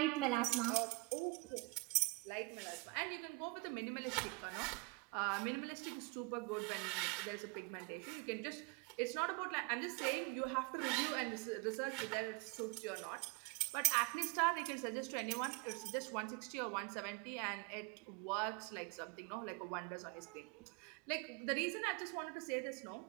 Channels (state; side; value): quieter; left; 27.2 dB